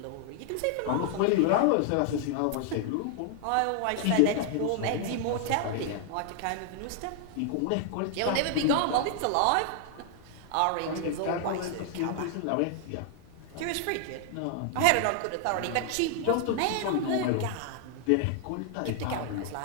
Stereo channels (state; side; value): different; both; correlation 0.00